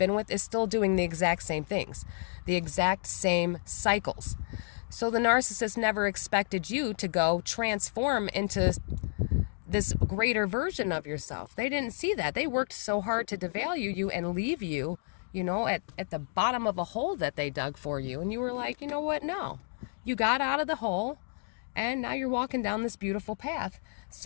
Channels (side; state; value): right; silent; 57 dB below the other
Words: with is still doing the exact same things, the exact same cycles. So the narcissist never expected you to go transform into this greater version of yourself. They didn't see that. They worked so hard to devalue you and leave you, at the bottom of a hole that they dug for you. And you were like, you know what? No. You got out of the hole and now you're walking down this beautiful path.